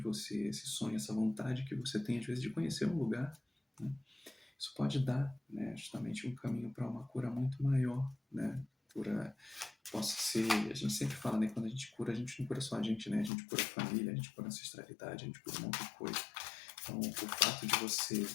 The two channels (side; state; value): right; drops out; at 13.3 s